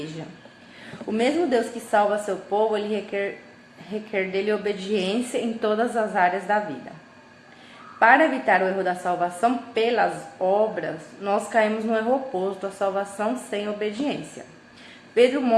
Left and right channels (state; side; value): identical; both; correlation 1.00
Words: O mesmo Deus que salva seu povo, ele requer dele obediência em todas as áreas da vida. Para evitar o erro da salvação pelas obras, nós caímos no erro oposto, a salvação sem obediência. Pedro